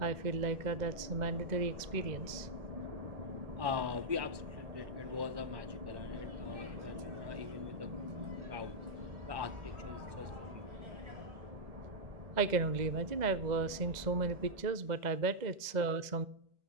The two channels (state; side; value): late; left; 2.0 ms